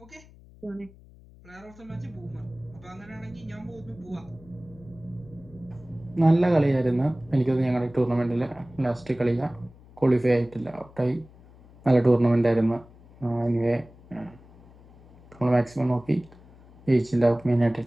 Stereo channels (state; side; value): noise; left; hum, 24 dB below the sound